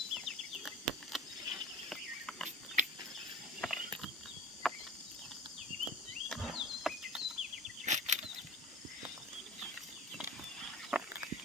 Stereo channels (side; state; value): both; normal; correlation 0.35